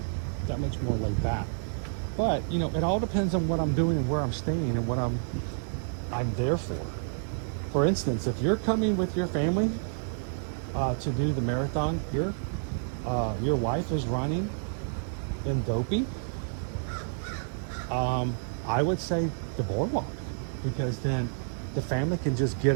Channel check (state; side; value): silent; left; digital silence